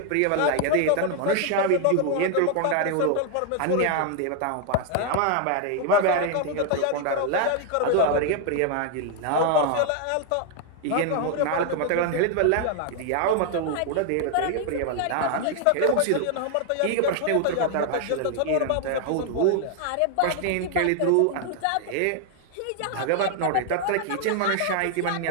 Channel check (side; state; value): both; different; correlation 0.00